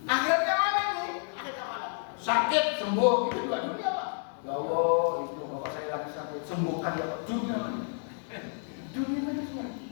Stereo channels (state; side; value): silent; right; 58 dB below the other